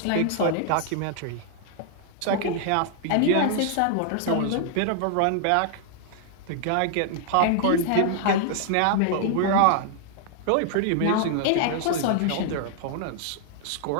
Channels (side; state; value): both; different; correlation -0.01